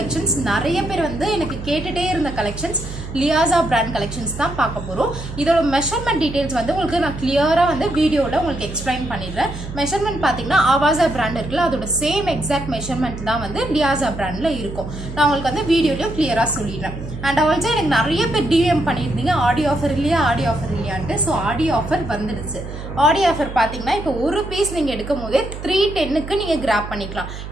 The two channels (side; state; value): right; noise; hum, 10 dB below the sound